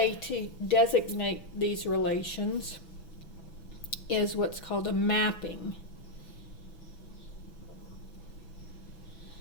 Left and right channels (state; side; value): late; right; 6.0 ms